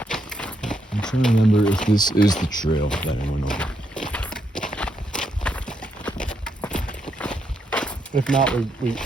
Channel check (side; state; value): both; normal; correlation 0.79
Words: I'm trying to remember if this is the trail that I went over. If not, we